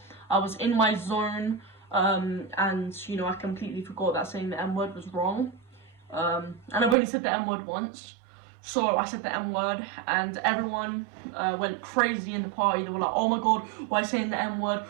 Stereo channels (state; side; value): drops out; left; at 7.0 s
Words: I was in my zone, and I completely forgot that saying the N-word was wrong. And I've only said the N-word once. So I said the N-word, and everyone went crazy in the party. They were like, oh my god, why are you saying the